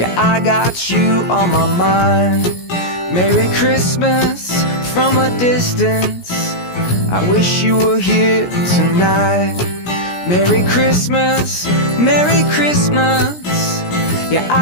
I got you on my mind. Merry Christmas from a distance. I wish you were here tonight. Merry Christmas, Merry Christmas. Yeah,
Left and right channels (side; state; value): right; late; 17 ms